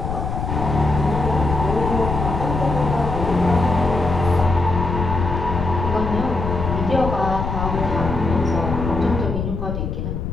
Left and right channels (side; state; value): left; noise; rumble, 3 dB below the sound